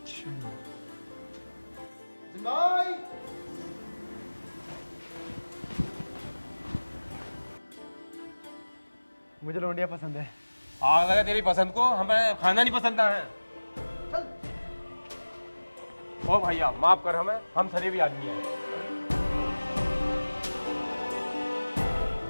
अच्छा। मुझे लौंडिया पसंद है। आग लगा तेरी पसंद को, हमें खाना नहीं पसंद है। ओ भैया माफ कर हमें, हम शरीफ आदमी हैं।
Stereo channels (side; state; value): both; inverted; correlation -1.00